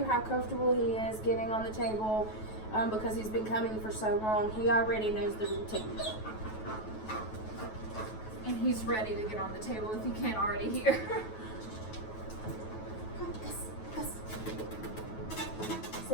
how comfortable he is getting on the table because he's been coming for so long. He already knows the routine. And he's ready to get on the table if you can't already hear. Come, Gus.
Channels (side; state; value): right; late; 9.3 ms